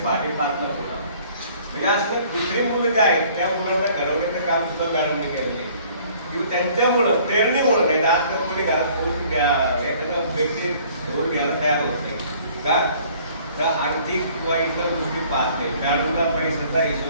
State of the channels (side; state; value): both; inverted; correlation -0.56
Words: पाठी 5 होता. म्हणजे असं दुसरी मुलं जे आहेत त्या मुलांना घडवण्याचं काम सुद्धा मॅडमने केलं नाही किंवा त्यांच्यामुळं प्रेरणेमुळं नाही. आजकाल कोणी घरात कोणी एखादा व्यक्ती घेऊन घ्यायला तयार होत नाही का, तर आर्थिक किंवा इतर गोष्टी पाहत नाही. मॅडमला पैशाचा